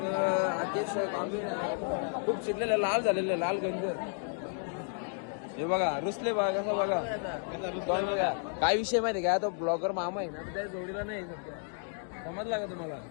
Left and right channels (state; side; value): silent; right; 56 dB below the other